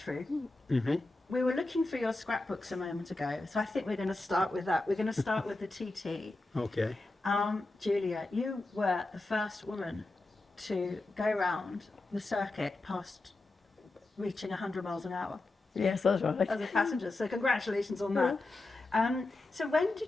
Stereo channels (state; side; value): quieter; right; 3.0 dB